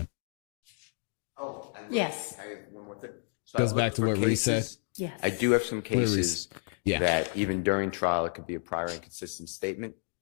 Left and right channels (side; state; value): right; silent; digital silence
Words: Oh, Yes. I have one more thing. So Goes back to what Reese said. Yes. I do have some cases Yeah. that even during trial, it could be a prior inconsistent statement.